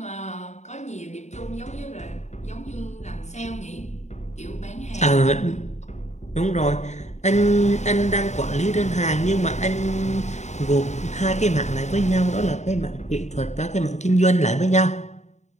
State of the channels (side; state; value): right; late; 0.33 ms